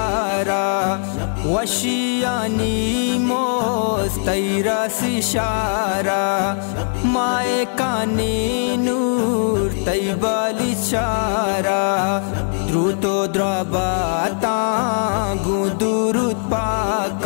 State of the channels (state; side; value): silent; right; 66 dB below the other